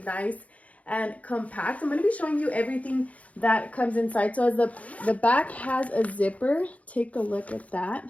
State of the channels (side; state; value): right; late; 0.068 ms